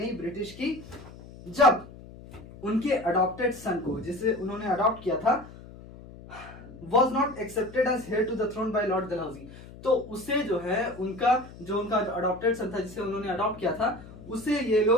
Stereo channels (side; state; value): left; noise; hum, 17 dB below the sound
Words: ब्रिटिश की, जब उनके अडॉप्टेड सन को, जिसे उन्होंने अडॉप्ट किया था, was not accepted as heir to the throne by Lord Dalhousie. तो उसे जो है उनका अडॉप्टेड सन था, जिसे उन्होंने अडॉप्ट किया था, उसे ये